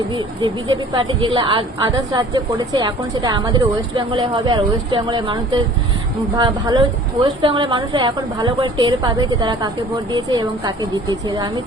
যে বিজেপি পার্টি যেগুলো আদার্স রাজ্যে করেছে, এখন সেটা আমাদের ওয়েস্ট বেঙ্গলে হবে। আর ওয়েস্ট বেঙ্গলের মানুষদের ভালো, ওয়েস্ট বেঙ্গলের মানুষরা এখন ভালো করে টের পাবে যে তারা কাকে ভোট দিয়েছে এবং কাকে জিতেছে। আমি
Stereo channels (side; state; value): both; normal; correlation 0.49